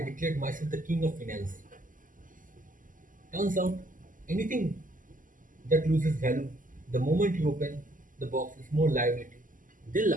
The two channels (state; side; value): late; left; 0.38 ms